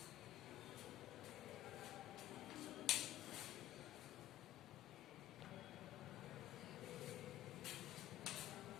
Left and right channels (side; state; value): right; quieter; 13.1 dB